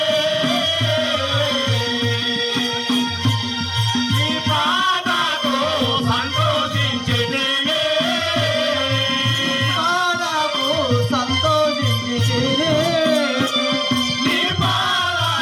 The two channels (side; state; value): both; identical; correlation 1.00